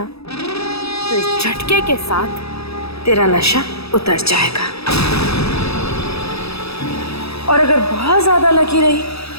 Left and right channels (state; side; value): late; right; 0.78 ms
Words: तो इस झटके के साथ तेरा नशा उतर जाएगा, और अगर बहुत ज्यादा लकी रही